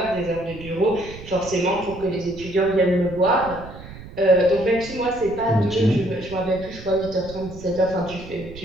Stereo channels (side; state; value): right; noise; rumble, 15 dB below the sound